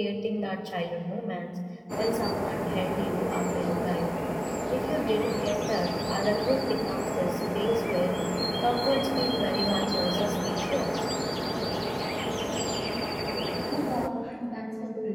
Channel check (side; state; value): both; identical; correlation 1.00